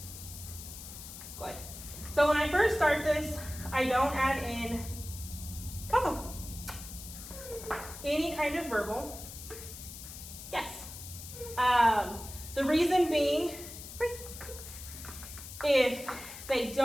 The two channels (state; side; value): noise; left; hiss, 12 dB below the sound